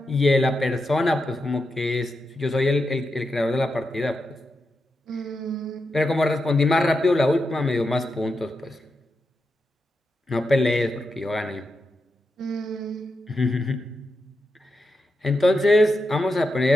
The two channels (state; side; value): normal; both; correlation 0.87